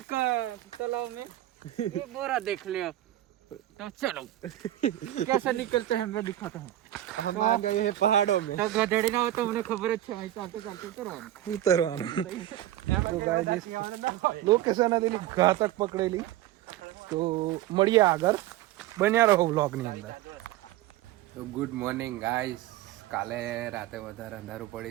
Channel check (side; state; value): left; quieter; 13.9 dB